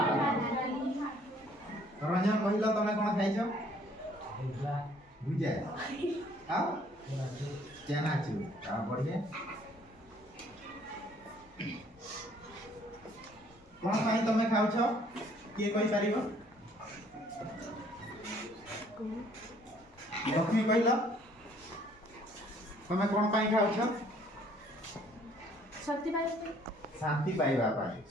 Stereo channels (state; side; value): normal; both; correlation 0.60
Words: রঞ্জন কহিল তুমি কোন খাইছ? ভুজা। আও? চানাচুর। তারপরে কোন পাই তুমি খাউছ? কে কই পারিব? লক্ষ্মী কহিল তুমি কোন পাই খাউছ? শক্তি পাইবা শান্তি পাইবা পাই।